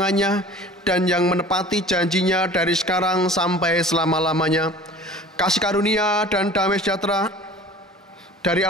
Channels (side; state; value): both; normal; correlation 0.44